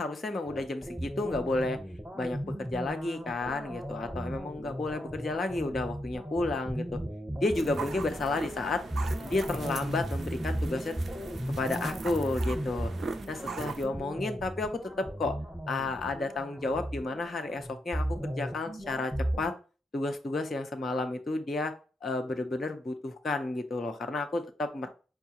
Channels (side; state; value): both; normal; correlation 0.82